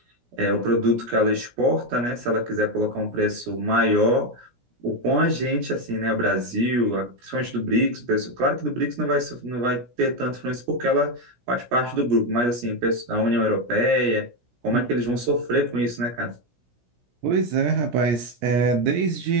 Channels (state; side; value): late; left; 17 ms